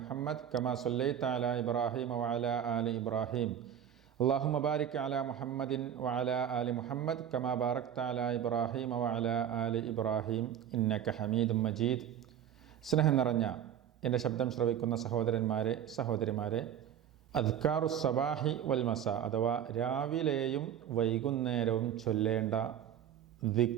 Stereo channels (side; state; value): left; quieter; 9.6 dB